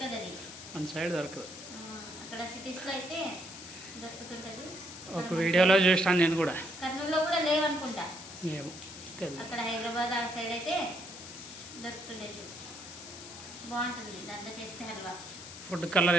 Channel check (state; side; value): noise; left; hiss, 13 dB below the sound